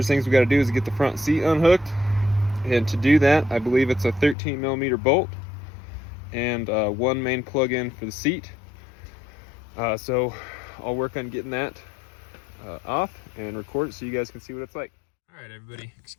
things we got to do is get the front seat unhooked, and to do that I believe it's a 13mm bolt and one main plug-in for the seat. So I'll work on getting that off and record it so you guys can see what it's like. All right, everybody,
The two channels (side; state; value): right; drops out; at 4.4 s